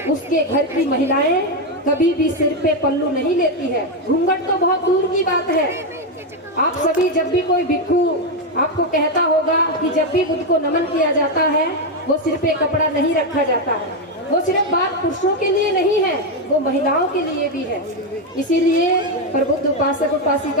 उसके घर की महिलाएं कभी भी सिर पे पल्लू नहीं लेती है। घूंघट तो बहुत दूर की बात है। आप सभी जब भी कोई भिक्षु आपको कहता होगा कि जब भी बुद्ध को नमन किया जाता है वो सिर पे कपड़ा नहीं रखा जाता है, वो सिर्फ बात पुरुषों के लिए नहीं है, वो महिलाओं के लिए भी है। इसीलिए प्रबुद्ध उपासक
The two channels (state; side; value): normal; both; correlation 0.06